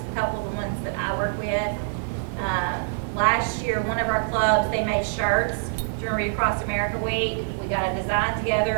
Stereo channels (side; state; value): left; silent; digital silence